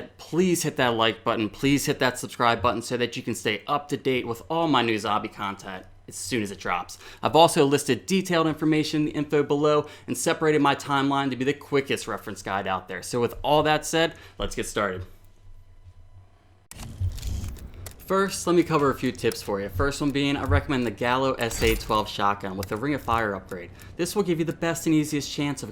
please hit that like button, please hit that subscribe button so that you can stay up to date with all my new zombie content as soon as it drops. I've also listed detailed information in the info below and separated my timeline to be the quickest reference guide out there. So with all that said, let's get started. First, let me cover a few tips for you. First one being, I recommend the Gallo SA-12 shotgun with the Ring of Fire upgrade. This will give you the best and easiest chance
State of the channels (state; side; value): identical; both; correlation 1.00